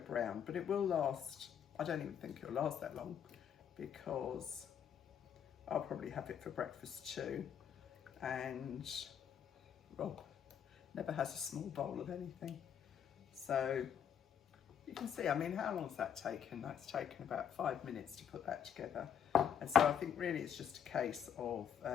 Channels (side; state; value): right; quieter; 8.5 dB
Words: but it will last, I don't even think it'll last that long because I'll probably have it for breakfast too. And Rob never has a small bowl of anything. So you can see, I mean, how long has that taken? That's taken about 5 minutes to put that together. And so I think really it's just a case of